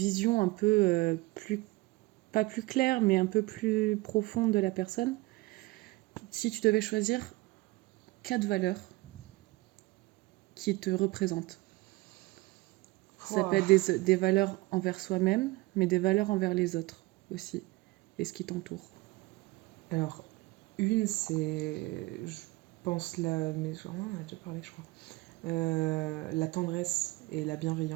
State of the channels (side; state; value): left; quieter; 21.9 dB